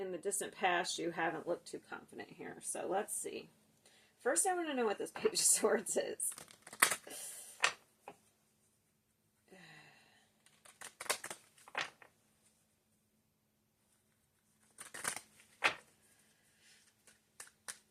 the distant past, you haven't looked too confident here. So let's see. First, I want to know what this Page of Swords is.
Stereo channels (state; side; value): identical; both; correlation 1.00